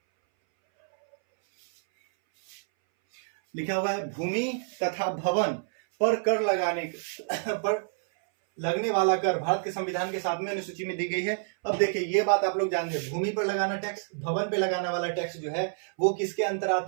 लिखा हुआ है भूमि तथा भवन पर कर लगाने पर लगने वाला कर भारत के संविधान के 7वें अनुसूची में दी गई है। अब देखिए ये बात आप लोग जानते हैं, भूमि पर लगाना टैक्स, भवन पे लगाना वाला टैक्स जो है वो किसके अंदर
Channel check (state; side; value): silent; left; 59 dB below the other